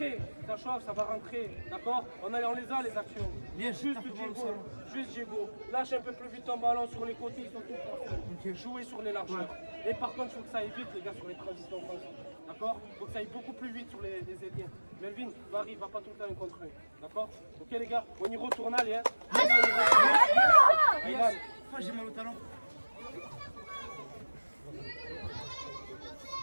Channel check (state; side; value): inverted; both; correlation -1.00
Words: Ça chauffe, ça va rentrer. D'accord, on les a les actions. Juste Diego. Lâche un peu plus vite ton ballon sur les côtés, ils sont tous personnes. Jouez sur les largeurs. Et par contre, il faut que ça aille vite, les gars, sur les transitions offensives. D'accord, il faut que ça aille beaucoup plus vite sur les ailiens. Melvin, Barry, va pas tout le temps un contre eux. D'accord. Ok les gars, on y retourne, allez. Hein. Allez, J'ai mal au talon.